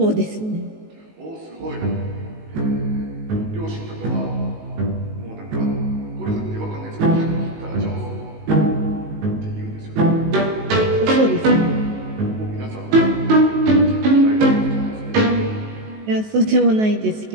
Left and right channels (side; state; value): left; late; 19 ms